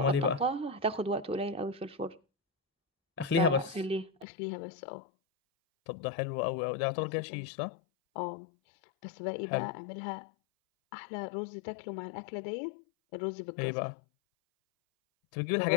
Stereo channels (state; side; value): drops out; right; at 4.2 s